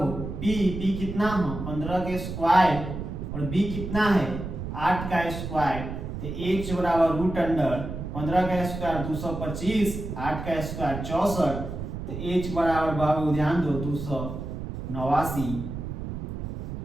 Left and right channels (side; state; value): right; noise; rumble, 7 dB below the sound